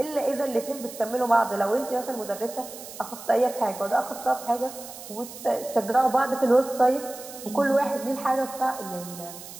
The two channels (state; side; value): noise; right; hiss, 14 dB below the sound